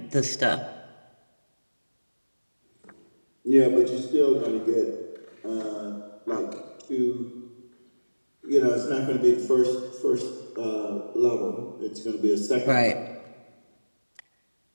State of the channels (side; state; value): both; inverted; correlation -1.00